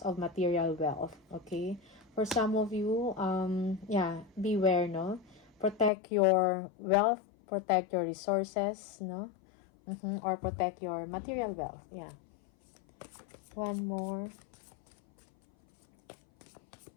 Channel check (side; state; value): right; drops out; at 5.9 s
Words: of material wealth. Okay? For some of you, yeah, beware, no? Protect your wealth, protect your resources, no? Or protect your material wealth. Yeah. One more.